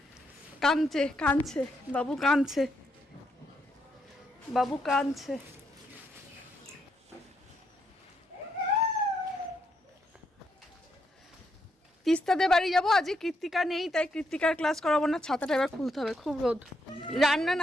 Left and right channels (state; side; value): normal; both; correlation 0.78